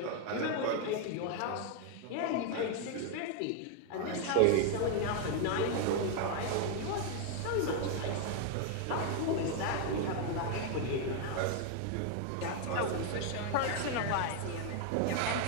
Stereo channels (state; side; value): different; both; correlation 0.01